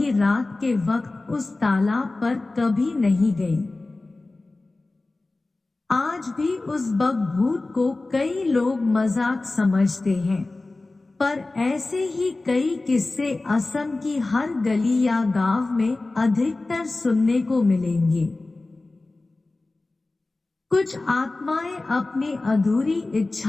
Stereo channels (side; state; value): right; quieter; 3.2 dB